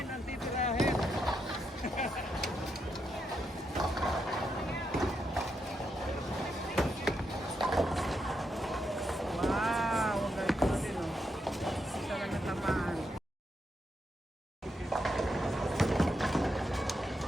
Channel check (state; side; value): normal; both; correlation 0.82